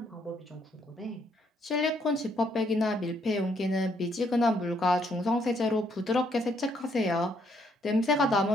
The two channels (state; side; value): normal; both; correlation 0.71